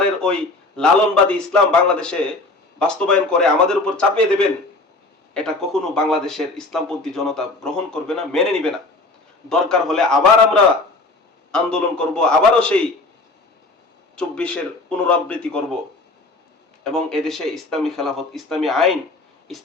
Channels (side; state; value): right; quieter; 3.1 dB